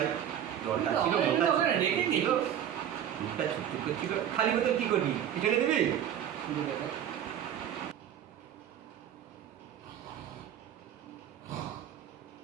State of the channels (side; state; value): left; quieter; 10.1 dB